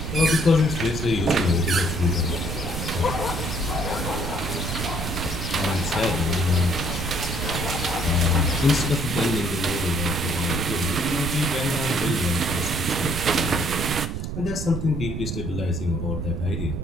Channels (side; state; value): right; noise; rumble, 4 dB below the sound